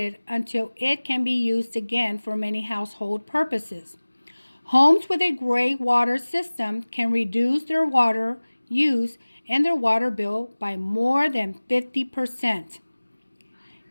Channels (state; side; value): inverted; both; correlation -1.00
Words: until it can be used again for many household purposes. Homes with a gray water system can reduce their water use and their water bill by more than 50%.